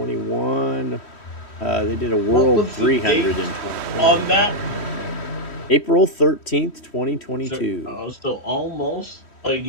They did a World was the 300 in date 2020. On that, April 13th, 2022. so almost a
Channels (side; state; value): right; late; 3.1 ms